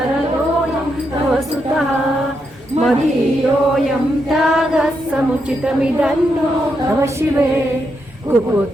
तव सुतः मदीयोऽयं त्यागः समुचितमिदन्नो तव शिवे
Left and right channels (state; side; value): normal; both; correlation 0.82